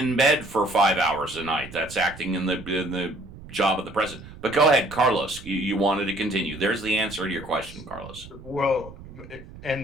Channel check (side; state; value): right; noise; rumble, 16 dB below the sound